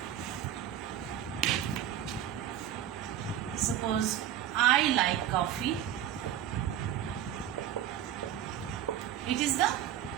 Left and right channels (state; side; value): quieter; left; 10.9 dB